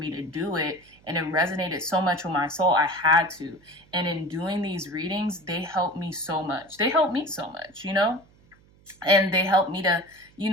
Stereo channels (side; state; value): right; noise; hum, 29 dB below the sound